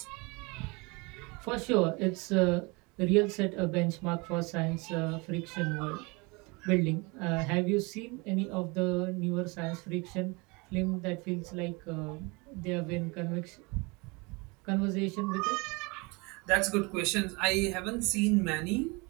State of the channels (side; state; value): left; quieter; 27.5 dB